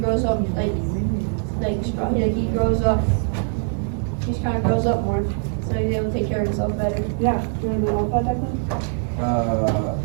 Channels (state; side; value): silent; left; 58 dB below the other